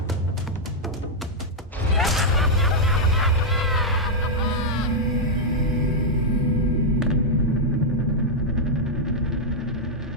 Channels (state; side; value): normal; both; correlation -0.03